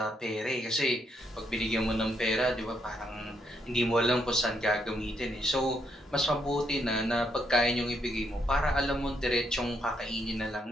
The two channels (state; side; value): normal; both; correlation 0.76